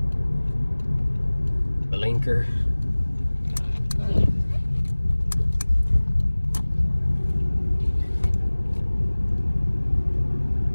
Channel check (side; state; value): both; inverted; correlation -1.00